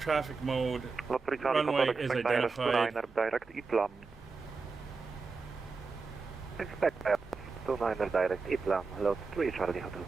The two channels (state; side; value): quieter; left; 4.4 dB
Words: mode, Lot 3 Charlie runway Hotel, is expect ILS identified. 29er direct Iplam. expect 29er direct, Iplam, Lot 3 Charlie Hotel.